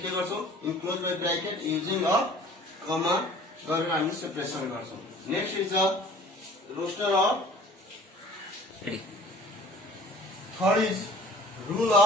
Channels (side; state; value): both; normal; correlation 0.49